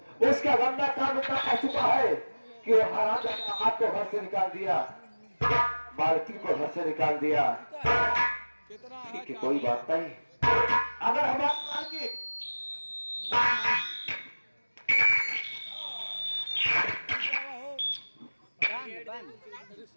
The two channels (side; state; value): both; inverted; correlation -1.00